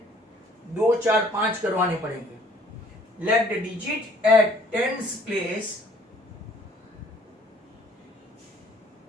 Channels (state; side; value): normal; both; correlation 0.58